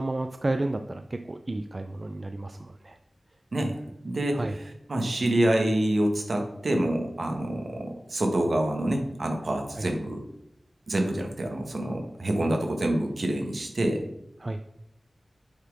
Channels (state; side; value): normal; both; correlation 0.96